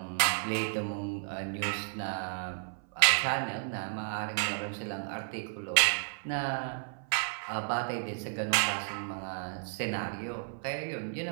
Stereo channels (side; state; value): left; silent; 56 dB below the other